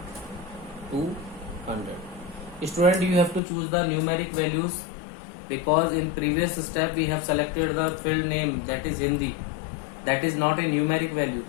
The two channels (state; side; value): drops out; right; at 3.4 s